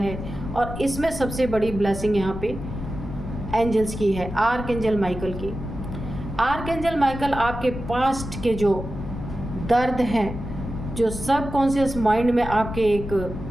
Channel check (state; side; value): noise; left; rumble, 8 dB below the sound